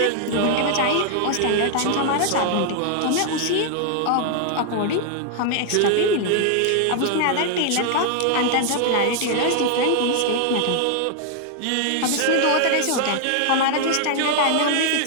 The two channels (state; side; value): different; both; correlation 0.00